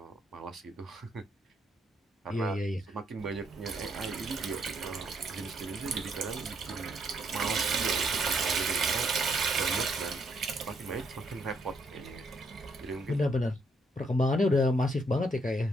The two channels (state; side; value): normal; both; correlation 0.73